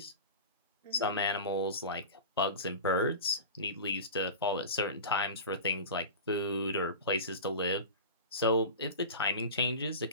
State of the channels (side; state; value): both; inverted; correlation -0.32